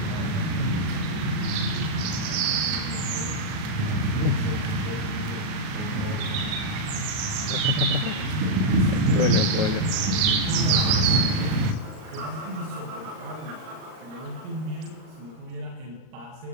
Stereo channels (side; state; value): left; late; 38 ms